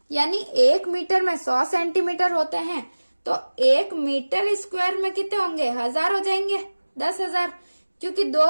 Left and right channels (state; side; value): inverted; both; correlation -1.00